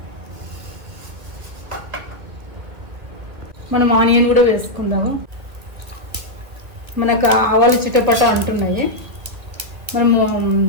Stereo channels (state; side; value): late; left; 1.9 ms